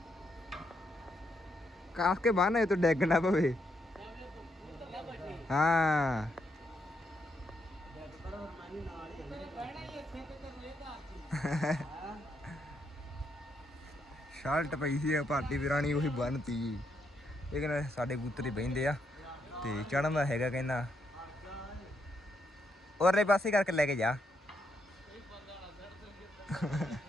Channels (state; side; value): normal; both; correlation 0.78